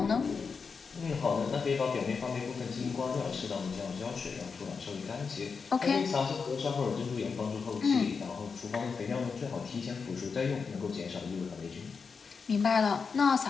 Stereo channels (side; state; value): right; quieter; 5.3 dB